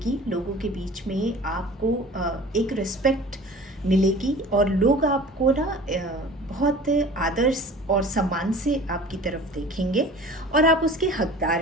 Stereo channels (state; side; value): normal; both; correlation 0.42